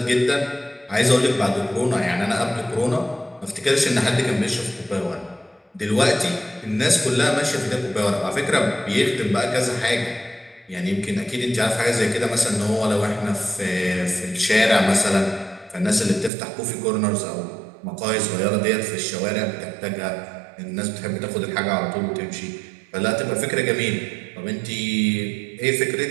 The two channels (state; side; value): drops out; left; at 16.3 s